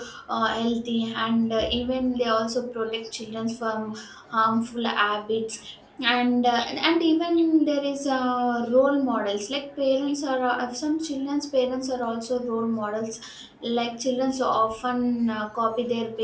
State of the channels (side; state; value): both; identical; correlation 1.00